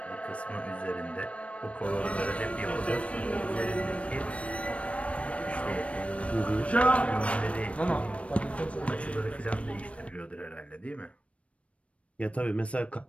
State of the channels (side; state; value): right; late; 0.063 ms